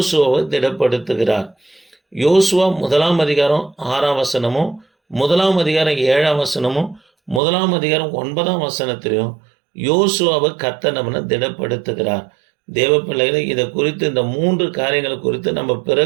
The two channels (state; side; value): drops out; left; at 7.4 s